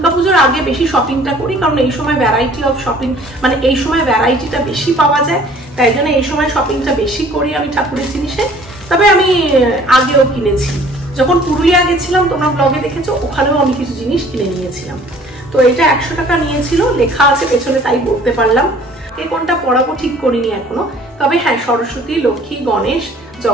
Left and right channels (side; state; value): both; normal; correlation 0.53